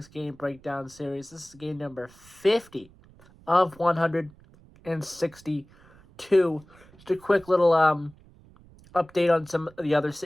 game breakdown series. This is game number 50 of 162. Just a quick little update on some of the other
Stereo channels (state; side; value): noise; right; rumble, 26 dB below the sound